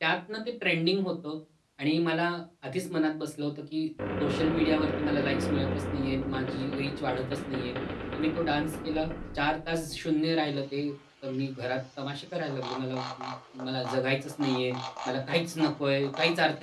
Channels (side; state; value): both; identical; correlation 1.00